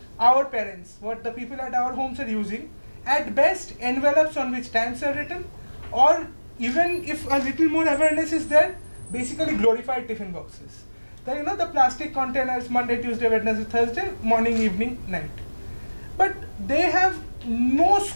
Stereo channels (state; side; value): inverted; both; correlation -1.00